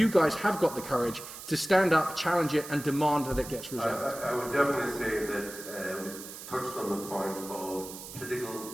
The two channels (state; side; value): noise; right; hiss, 12 dB below the sound